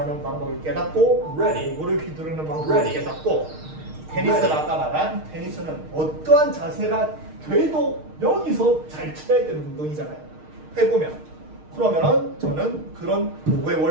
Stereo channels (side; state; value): left; late; 6.5 ms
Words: 방법을 깨닫고 도구를 휘두르는 방법을 깨닫고 테니스를 아까 말한 테니스는 어떠한 자세가 돼도 여기서 잘 쳐야 되는 운동이잖아요. 해보면 그러면은 저는 그런 도구의